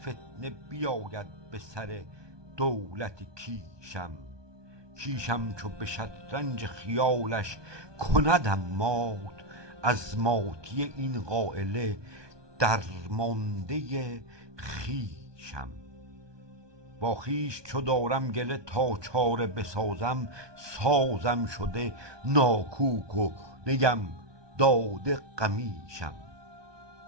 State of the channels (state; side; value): late; left; 1.2 ms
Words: فتنه بیاید به سر دولت کیشم. کیشم چو به شطرنج خیالش کندم مات، از ماتی این قایله درمانده خویشم. با خویش چو دارم گله تا چاره بسازم، سازم شده ناکوک و نیم داده قمیشم.